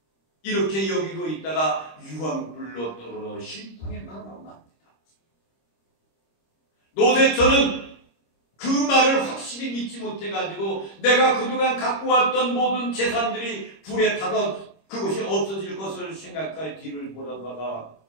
이렇게 여기고 있다가 유황불로 떨어져 심판에 나갑니다. 노세처는 그 말을 확실히 믿지 못해가지고 내가 그동안 갖고 왔던 모든 재산들이 불에 타서 그것이 없어질 것을 생각하여 뒤를 보다가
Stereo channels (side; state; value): right; late; 26 ms